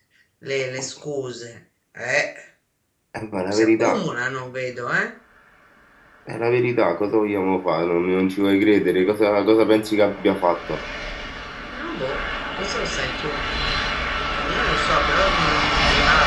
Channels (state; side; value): identical; both; correlation 1.00